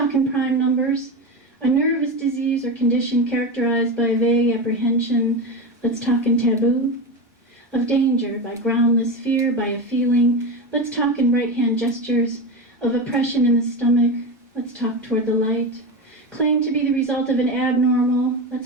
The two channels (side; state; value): both; normal; correlation 0.20